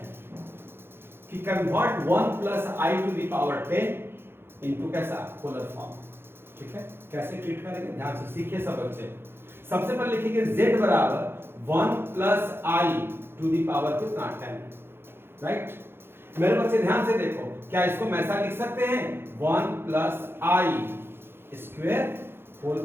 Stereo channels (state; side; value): late; left; 0.11 ms